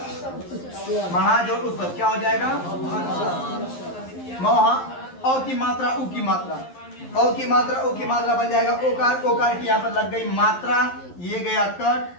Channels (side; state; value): right; late; 11 ms